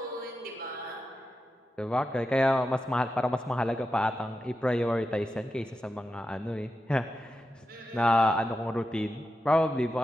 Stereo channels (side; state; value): both; normal; correlation 0.89